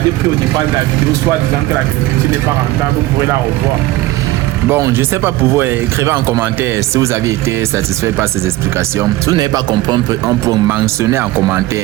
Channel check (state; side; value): quieter; left; 17.3 dB